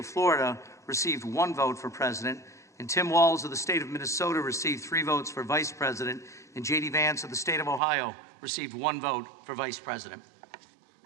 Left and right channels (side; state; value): left; drops out; at 7.8 s